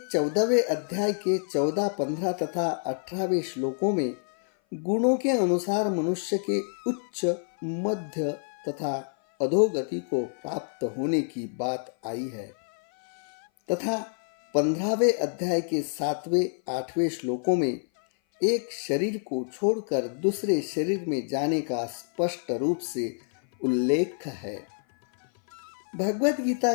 14वें अध्याय के 14, 15 तथा 18वें श्लोकों में गुणों के अनुसार मनुष्य के उच्च, मध्य तथा अधोगति को प्राप्त होने की बात आई है तथा 15वें अध्याय के 7वें, 8वें श्लोकों में एक शरीर को छोड़कर दूसरे शरीर में जाने का स्पष्ट रूप से उल्लेख है। भगवद गीता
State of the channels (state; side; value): silent; right; 57 dB below the other